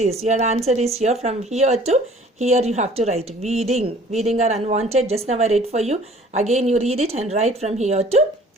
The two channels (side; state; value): both; normal; correlation 0.51